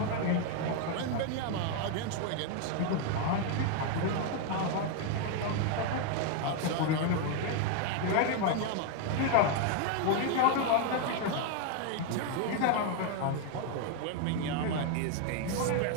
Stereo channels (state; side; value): different; both; correlation 0.01